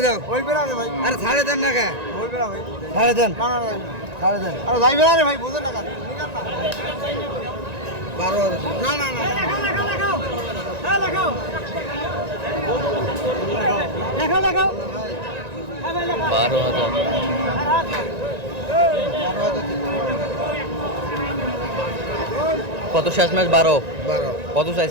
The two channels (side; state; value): left; late; 1.9 ms